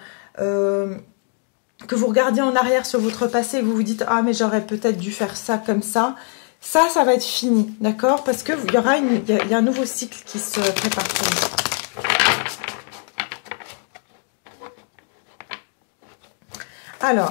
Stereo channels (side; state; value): right; quieter; 39.3 dB